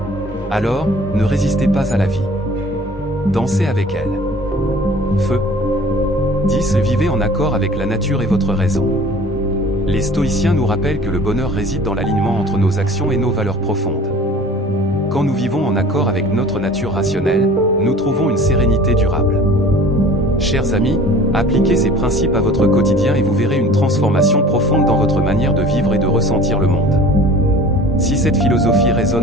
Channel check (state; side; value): normal; both; correlation 0.46